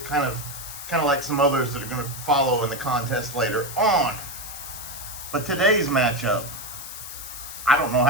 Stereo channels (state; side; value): noise; left; hiss, 10 dB below the sound